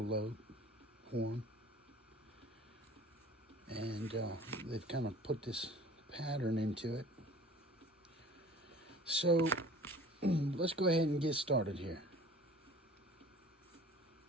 horn. And they've kind of put this pattern into it. So let's go ahead and get started here.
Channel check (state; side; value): normal; both; correlation 0.47